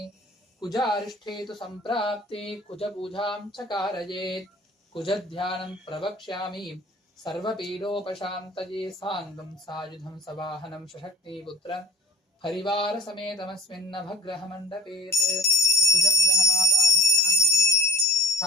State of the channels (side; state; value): both; normal; correlation 0.46